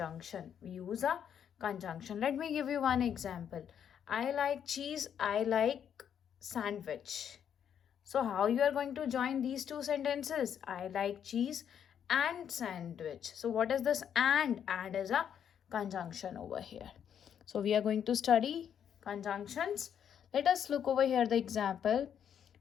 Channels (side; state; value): right; quieter; 8.7 dB